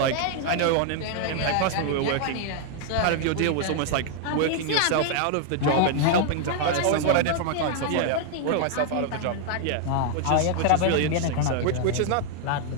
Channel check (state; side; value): different; both; correlation 0.00